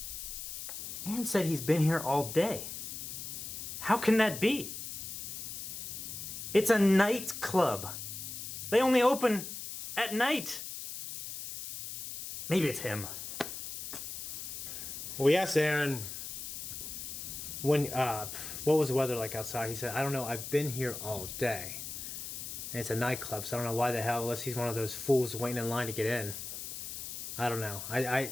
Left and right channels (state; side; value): noise; left; hiss, 7 dB below the sound